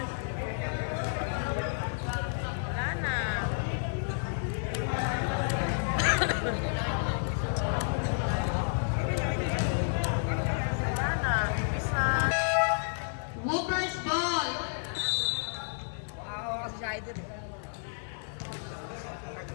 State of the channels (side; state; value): right; silent; digital silence